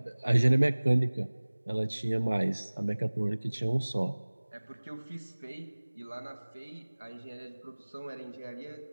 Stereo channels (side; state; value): both; inverted; correlation -1.00